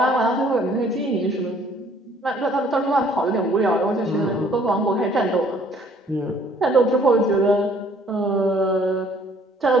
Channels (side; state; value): both; normal; correlation 0.59